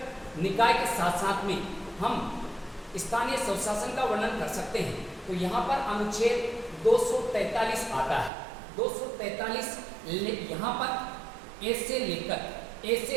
निकाय के साथ साथ में हम स्थानीय स्वशासन का वर्णन कर सकते हैं। तो यहाँ पर अनुच्छेद 243 आता है। 243 यहाँ पर ए से लेकर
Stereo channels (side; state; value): left; drops out; at 8.3 s